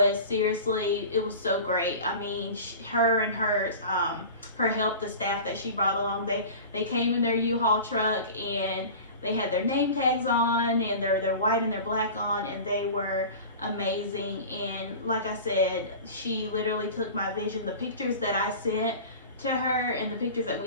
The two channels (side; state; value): both; inverted; correlation -0.36